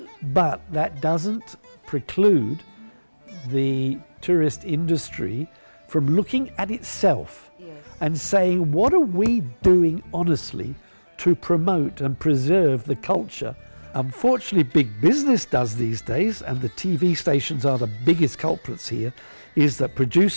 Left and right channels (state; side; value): inverted; both; correlation -1.00